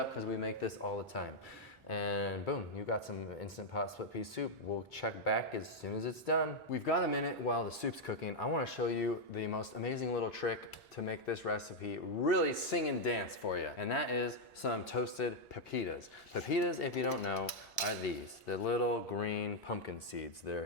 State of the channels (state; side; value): normal; both; correlation -0.01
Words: because we make this all the time. And boom, you got some Instant Pot split pea soup. We'll check back as soon as it's done. We've got a minute while the soup's cooking. I wanna show you the most amazing little trick to make this recipe really sing and dance for you. And that is some toasted pepitas. Pepitas, if you don't know, are these. The little green pumpkin seeds.